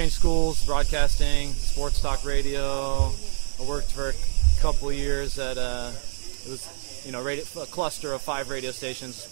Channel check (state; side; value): silent; left; digital silence